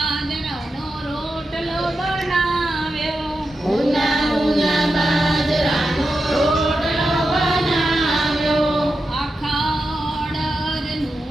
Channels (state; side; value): normal; both; correlation 0.89